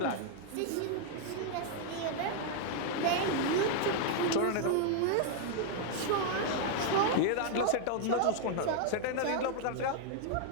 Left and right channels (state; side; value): different; both; correlation 0.00